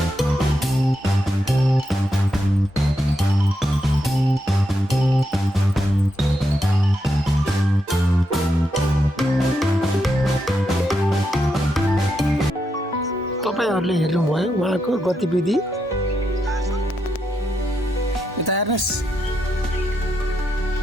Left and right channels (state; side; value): normal; both; correlation 0.83